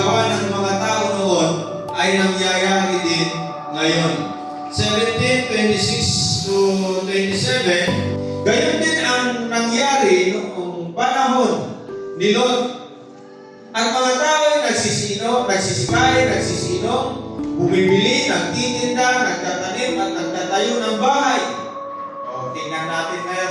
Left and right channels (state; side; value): identical; both; correlation 1.00